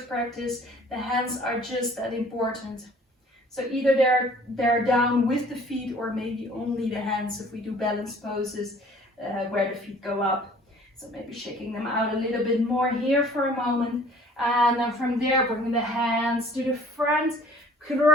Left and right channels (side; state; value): both; normal; correlation 0.52